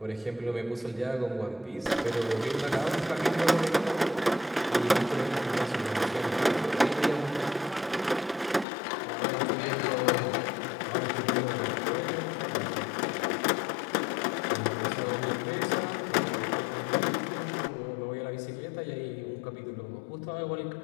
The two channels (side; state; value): right; drops out; at 8.7 s